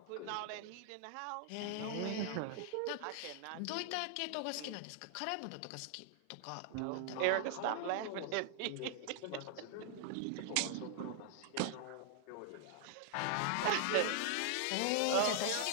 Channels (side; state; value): both; different; correlation 0.00